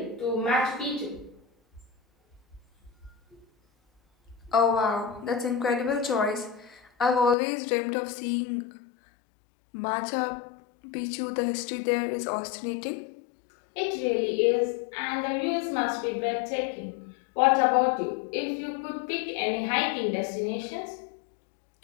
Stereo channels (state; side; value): drops out; right; at 7.4 s